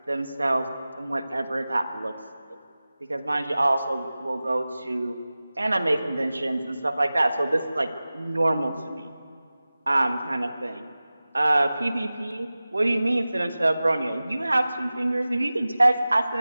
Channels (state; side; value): inverted; both; correlation -0.97